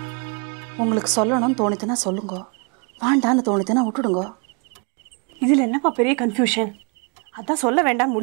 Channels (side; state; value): left; quieter; 36.2 dB